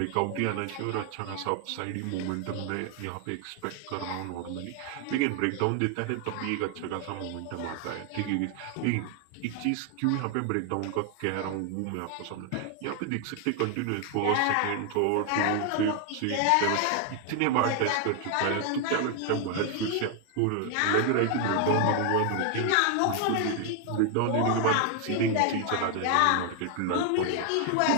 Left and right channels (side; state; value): both; different; correlation 0.00